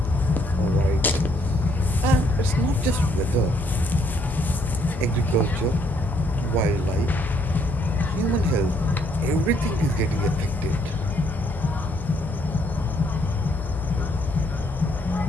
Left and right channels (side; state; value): both; normal; correlation 0.69